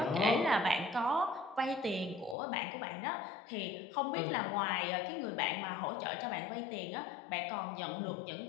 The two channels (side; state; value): right; drops out; at 2.4 s